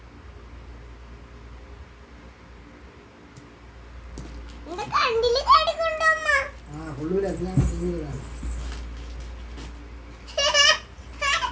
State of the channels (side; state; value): both; identical; correlation 1.00